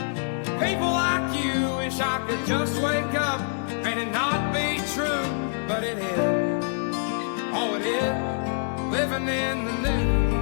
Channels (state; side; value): silent; right; digital silence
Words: people like you. Wish I could just wake up and it not be true, but it is. Oh, it is. Living in the